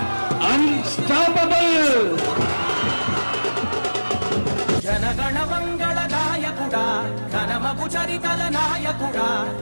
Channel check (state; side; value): inverted; both; correlation -1.00